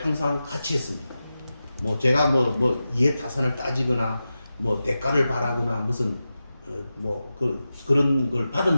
항상 같이 했습니다. 제가 이해타산을 따지거나 대가를 바라거나 무슨 그런 걸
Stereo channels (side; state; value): both; inverted; correlation -0.93